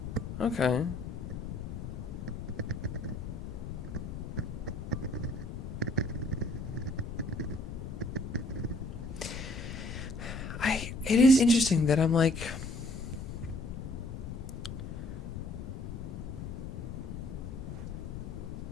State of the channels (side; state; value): left; noise; rumble, 7 dB below the sound